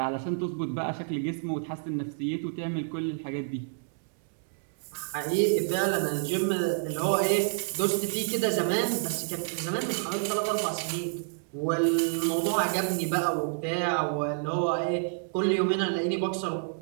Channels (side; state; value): left; silent; 59 dB below the other